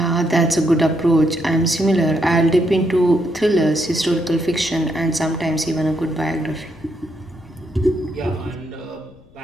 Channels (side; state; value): left; noise; rumble, 27 dB below the sound